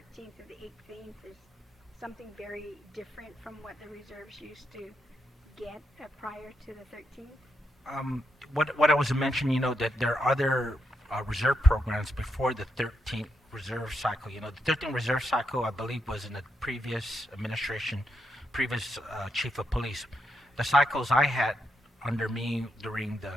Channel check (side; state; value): both; normal; correlation 0.81